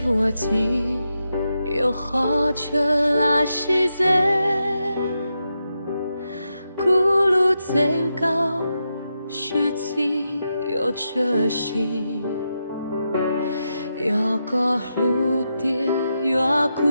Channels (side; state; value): both; inverted; correlation -0.86